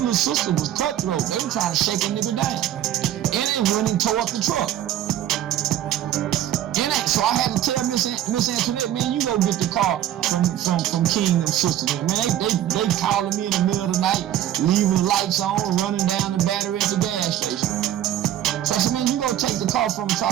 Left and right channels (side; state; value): left; quieter; 11.9 dB